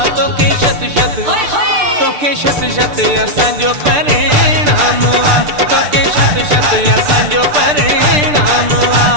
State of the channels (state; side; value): late; left; 6.7 ms